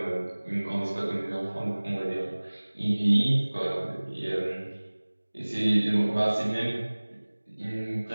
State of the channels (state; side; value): inverted; both; correlation -1.00